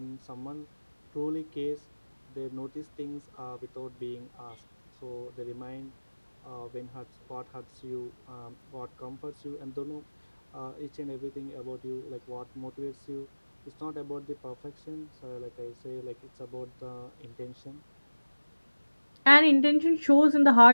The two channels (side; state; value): both; inverted; correlation -1.00